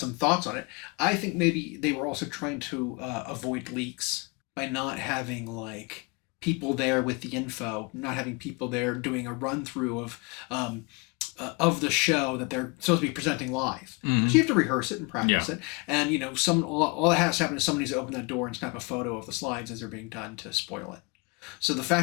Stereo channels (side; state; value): right; quieter; 29.8 dB